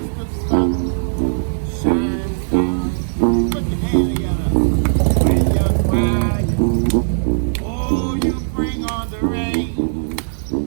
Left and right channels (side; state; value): left; silent; digital silence